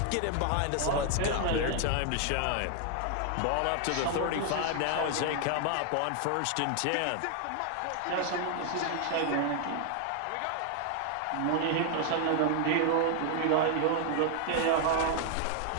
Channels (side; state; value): both; different; correlation 0.00